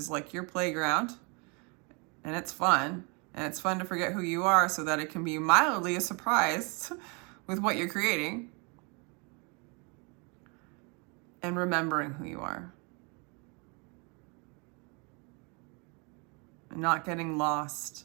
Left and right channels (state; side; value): quieter; left; 32.6 dB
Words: like your playground and it's fun to forget who you are so that it can be mildly a surprise with what you're creating, and remembering who you are and not getting lost